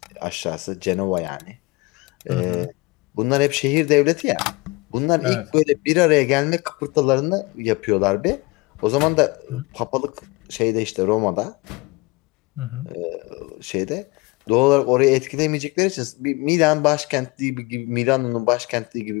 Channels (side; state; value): right; quieter; 24.1 dB